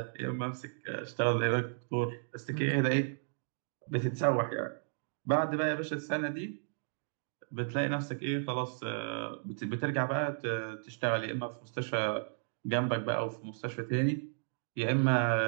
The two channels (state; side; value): silent; left; digital silence